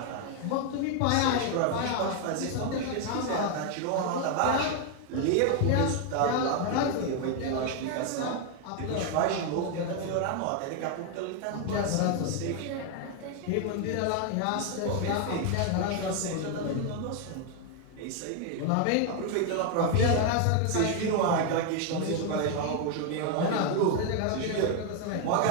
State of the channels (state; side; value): different; both; correlation 0.01